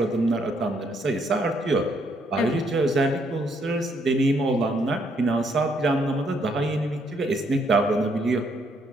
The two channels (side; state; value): both; normal; correlation 0.71